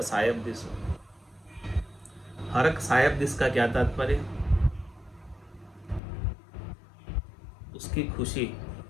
सायब दिस। हरक सायब दिस का क्या तात्पर्य? उसकी खुशी,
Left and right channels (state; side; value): drops out; right; at 6.0 s